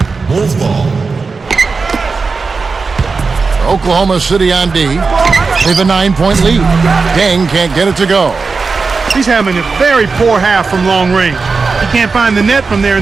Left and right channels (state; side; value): quieter; left; 4.5 dB